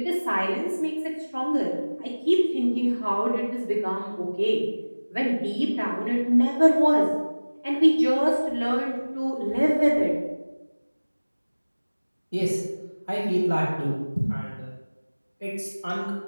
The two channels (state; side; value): inverted; both; correlation -1.00